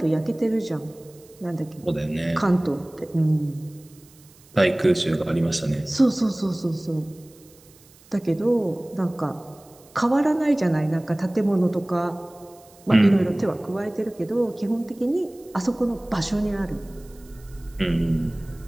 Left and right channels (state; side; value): noise; right; hiss, 26 dB below the sound